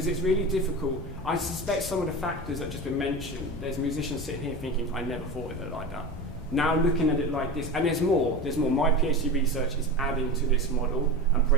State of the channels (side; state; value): both; normal; correlation 0.27